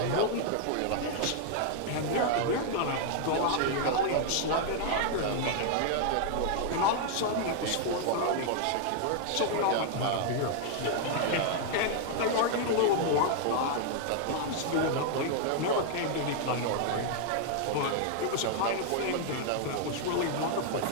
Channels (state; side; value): different; both; correlation 0.00